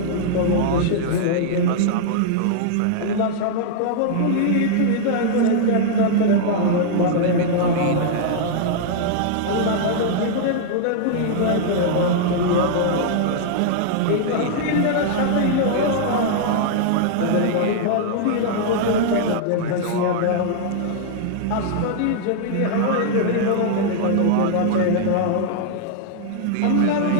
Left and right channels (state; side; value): different; both; correlation -0.01